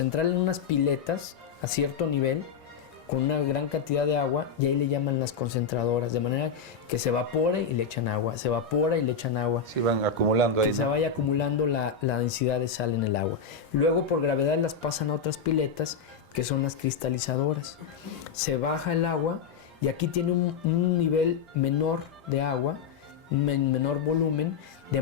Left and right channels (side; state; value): right; quieter; 6.1 dB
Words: en unas piletas a cierto nivel, con una gran cantidad de agua, y ahí le llaman las concentradoras, de manera que se evapore y le echan agua, se evapora y le echan agua. Se van acumulando ahí. Que se vaya acumulando la densidad de sal en el agua. Luego por gravedad las pasan a otras piletas, que son las cristalizadoras. Se baja el agua y aquí tiene un nivel menor de agua, menor volumen, de